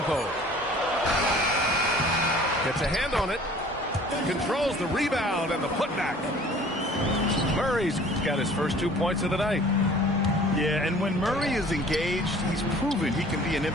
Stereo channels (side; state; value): both; normal; correlation 0.50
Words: Gets a hand on it. Controls the rebound and the putback. Murray's got his first 2 points of the night. Yeah, and when Murray is engaged, he's proven he can be an